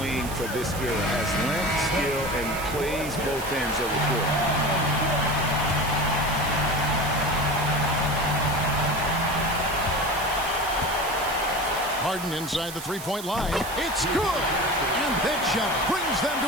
wing for this era. Has length, skill, and plays both ends of the court. Harden inside the 3-point line. It's good. And that shot brings them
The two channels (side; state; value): right; noise; hiss, 11 dB below the sound